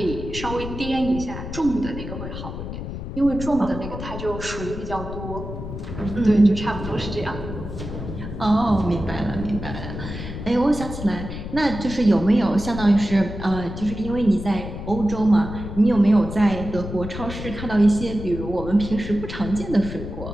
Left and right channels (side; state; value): left; noise; rumble, 8 dB below the sound